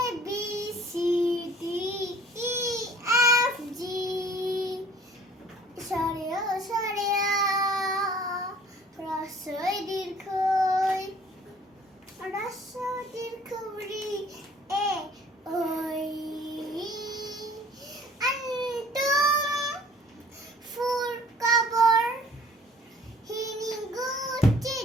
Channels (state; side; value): normal; both; correlation 0.52